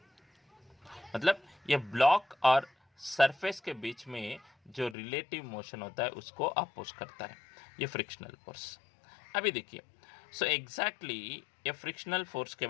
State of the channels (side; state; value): right; drops out; at 5.0 s